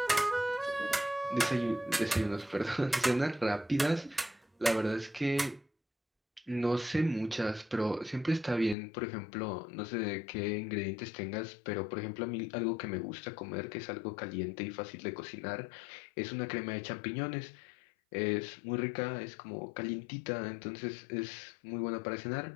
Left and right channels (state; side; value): drops out; right; at 8.8 s